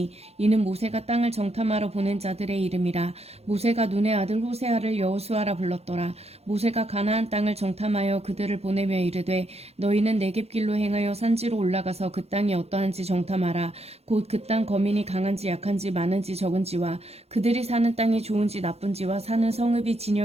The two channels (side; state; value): left; late; 0.30 ms